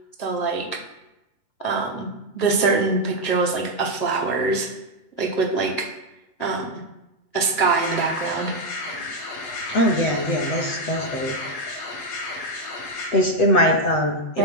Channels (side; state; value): right; late; 7.5 ms